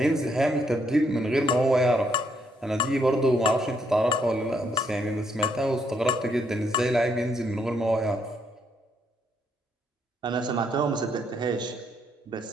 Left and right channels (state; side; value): normal; both; correlation 0.74